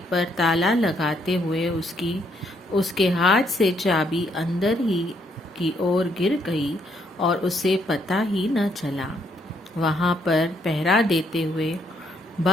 पर ताला लगाते हुए उसके हाथ से चाबी अंदर ही की ओर गिर गई और उसे पता ही न चला। वहां पर पहरा देते हुए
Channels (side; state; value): both; normal; correlation 0.72